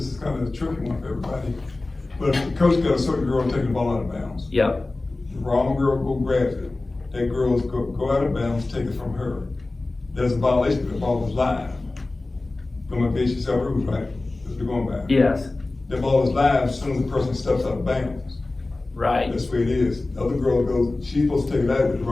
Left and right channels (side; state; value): right; quieter; 3.1 dB